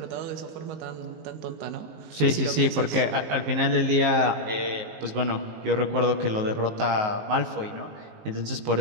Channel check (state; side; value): late; left; 19 ms